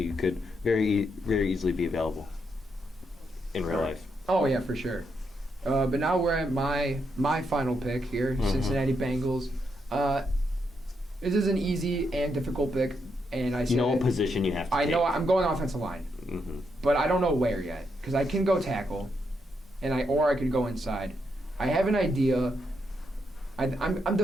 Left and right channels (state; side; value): normal; both; correlation 0.80